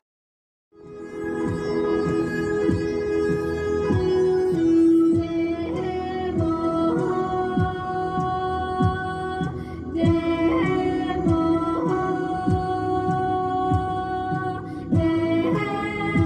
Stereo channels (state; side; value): identical; both; correlation 1.00